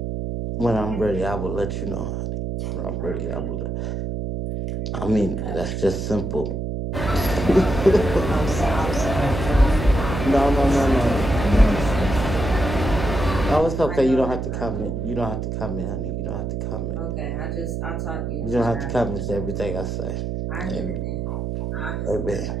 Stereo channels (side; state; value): right; noise; hum, 3 dB below the sound